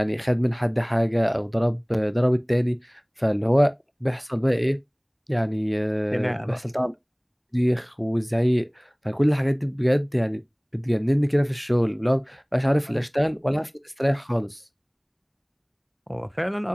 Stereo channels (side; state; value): both; identical; correlation 1.00